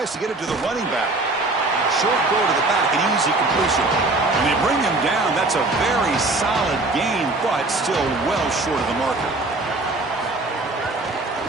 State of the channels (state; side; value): quieter; left; 3.0 dB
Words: to get it to the running back. Short throw to the back, an easy completion. And they bring him down. That's a very solid gain, but still well short of the marker.